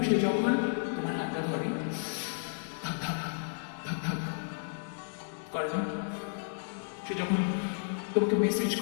সে যখন তোমার হাতটা ধরে ধাক ধাক ধাক ধাক করে না, সে যখন তোমাকে মেসেজ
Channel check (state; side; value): silent; right; digital silence